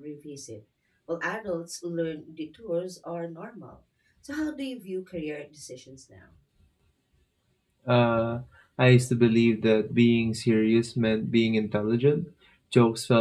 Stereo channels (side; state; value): both; identical; correlation 1.00